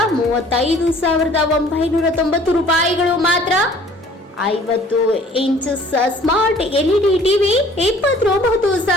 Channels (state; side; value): normal; both; correlation 0.53